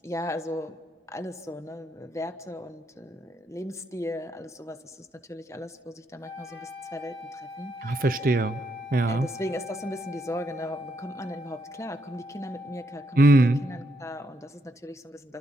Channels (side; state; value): both; normal; correlation 0.77